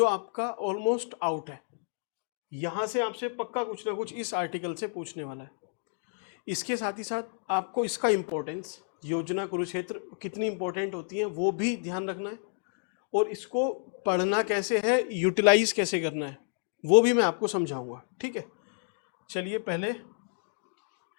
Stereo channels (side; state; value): right; silent; digital silence